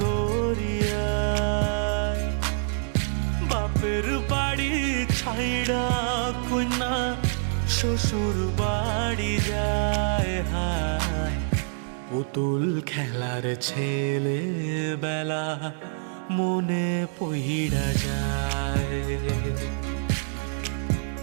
দরিয়ায়। বাপের বাড়ি ছাইড়া কন্যা শ্বশুর বাড়ি যায়। হায় পুতুল খেলার ছেলে বেলা মনে পইড়া যায়।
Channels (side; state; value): left; silent; digital silence